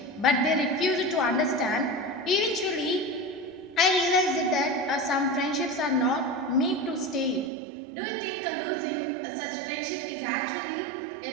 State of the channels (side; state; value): left; drops out; at 7.5 s